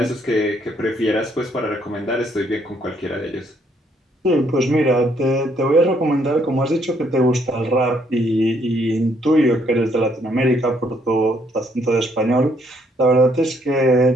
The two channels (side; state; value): both; normal; correlation 0.69